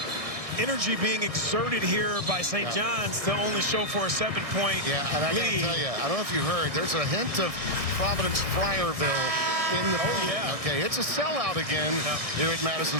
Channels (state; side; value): late; left; 1.6 ms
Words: energy being exerted here by St. John's to only show for a 7-point Yeah, and I lead. gotta tell you, I don't know if you heard, there's a hint of Providence Friarville in the building. Yeah. Okay, it's a sellout again here at Madison